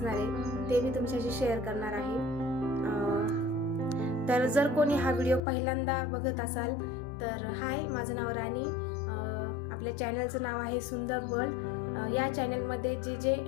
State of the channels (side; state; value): right; drops out; at 5.4 s